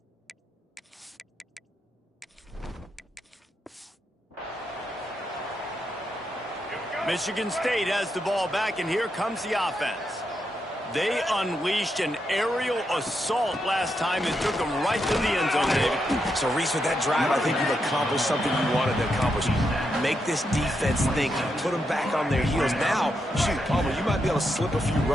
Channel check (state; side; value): normal; both; correlation 0.83